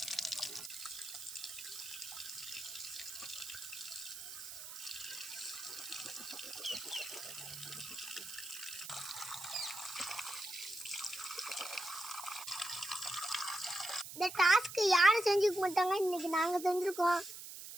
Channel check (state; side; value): noise; right; hiss, 10 dB below the sound